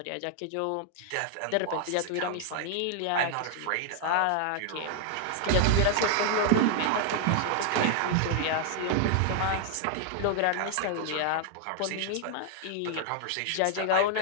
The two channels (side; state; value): both; different; correlation 0.00